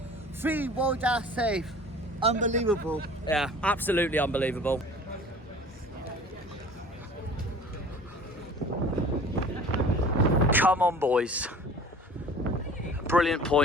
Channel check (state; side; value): normal; both; correlation 0.45